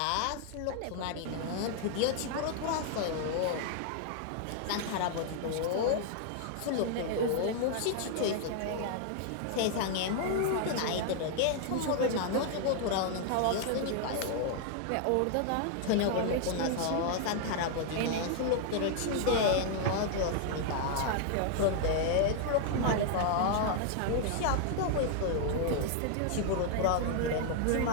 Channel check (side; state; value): both; different; correlation 0.00